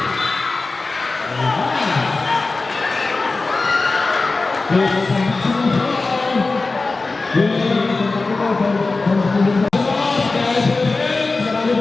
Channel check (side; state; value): right; quieter; 3.6 dB